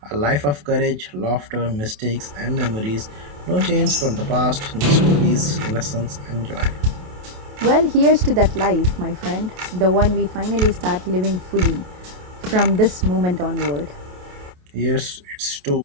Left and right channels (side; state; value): left; late; 28 ms